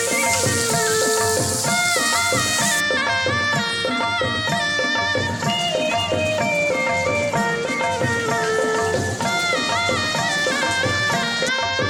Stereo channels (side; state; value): both; identical; correlation 1.00